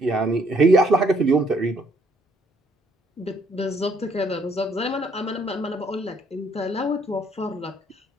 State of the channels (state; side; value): normal; both; correlation 0.67